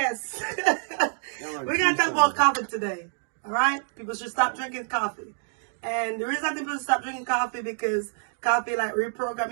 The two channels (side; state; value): left; silent; digital silence